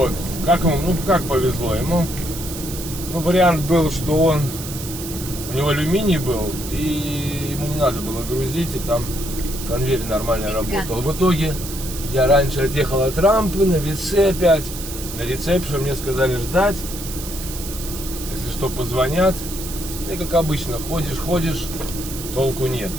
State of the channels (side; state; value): right; noise; hiss, 10 dB below the sound